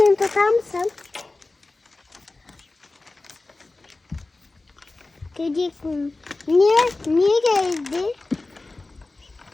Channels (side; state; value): right; quieter; 3.2 dB